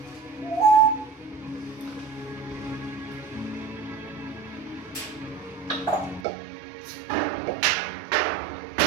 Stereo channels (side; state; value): left; drops out; at 6.2 s